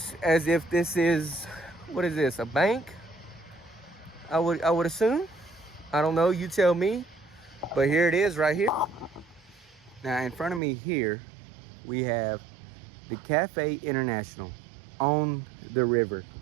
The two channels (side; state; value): left; drops out; at 10.6 s